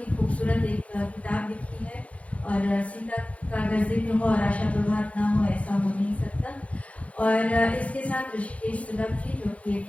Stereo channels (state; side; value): late; right; 0.065 ms